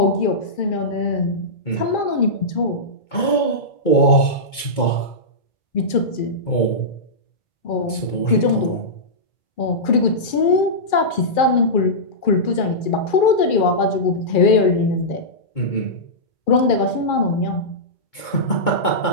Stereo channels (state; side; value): late; right; 2.2 ms